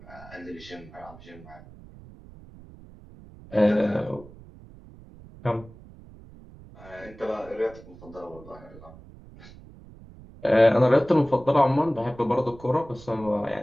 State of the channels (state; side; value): noise; right; rumble, 20 dB below the sound